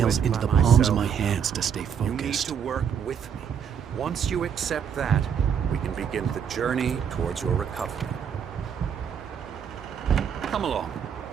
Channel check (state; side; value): quieter; left; 7.7 dB